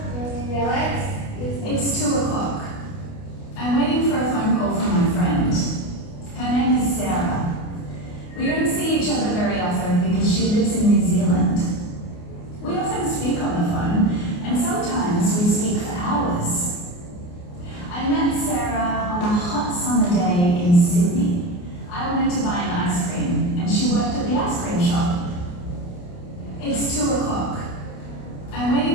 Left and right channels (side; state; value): right; late; 29 ms